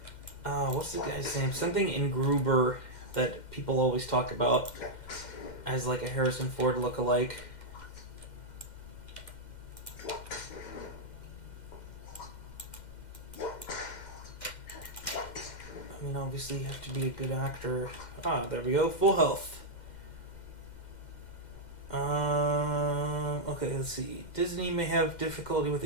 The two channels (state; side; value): late; right; 2.1 ms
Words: what's the guy's name? Something in Gruber that people always talk about as like a Harrison Ford lookalike. I mean, obviously you have to be a good actor. There we go. Full health. Okay, let's see. Disney may have difficulty with